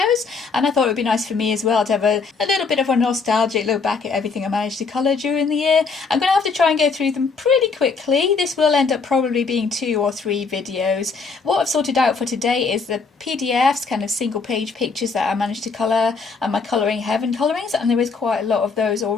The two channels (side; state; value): right; quieter; 4.8 dB